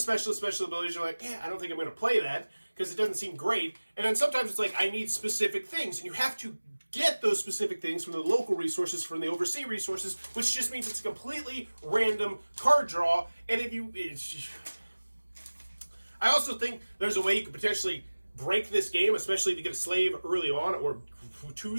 abilities are like, I don't think I'm going to play that because it doesn't seem great. And then sometimes it's like, I need specific things. And you have to get those specific things from the local resources, from the overseas resources, which just means it's a completely random card draw. And I also think there's a way you could potentially break this game, especially if you get a slave early on, or 2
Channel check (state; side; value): inverted; both; correlation -1.00